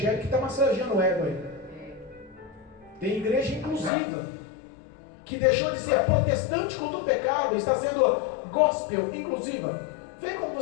que está massageando o ego aí. Tem igreja inclusiva, que deixou de ser protestante contra o pecado, está sendo gospel inclusiva. Vem como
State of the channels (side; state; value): right; drops out; at 3.9 s